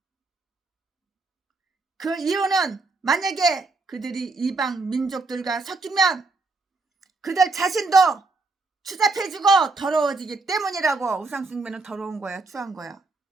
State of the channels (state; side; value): quieter; left; 3.6 dB